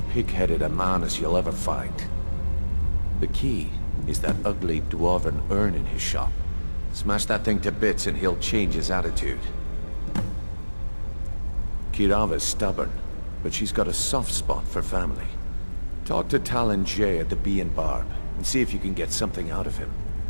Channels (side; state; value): both; inverted; correlation -1.00